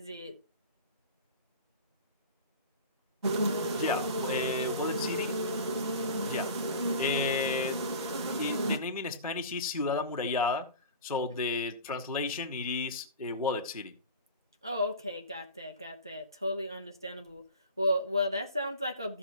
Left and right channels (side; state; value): both; inverted; correlation -0.35